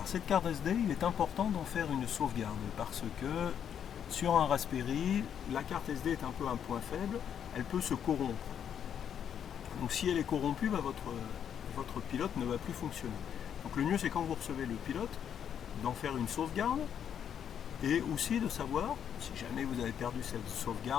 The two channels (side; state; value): right; quieter; 8.7 dB